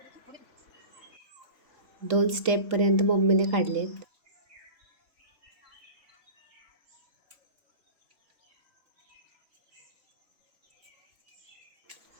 2 स्टेपपर्यंत मम्मीने काढलेत.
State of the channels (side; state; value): left; late; 3.7 ms